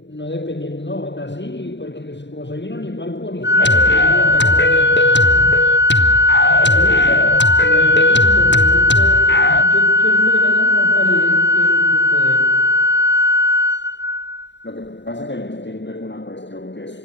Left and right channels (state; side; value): late; right; 0.52 ms